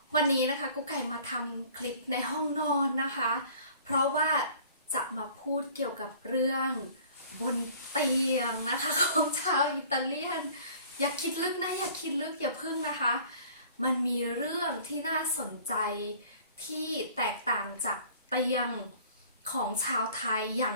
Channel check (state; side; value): inverted; both; correlation -0.50